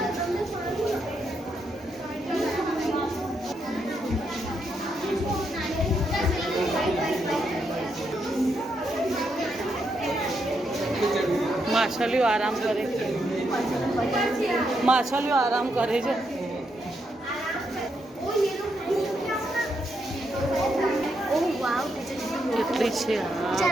માછલીઓ આરામ કરે છે. માછલીઓ આરામ કરે છે. કેટલી છે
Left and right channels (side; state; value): both; normal; correlation 0.80